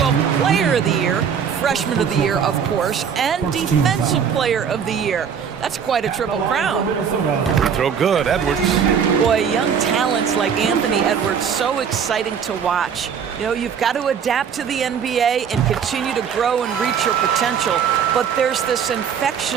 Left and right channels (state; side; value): quieter; left; 7.3 dB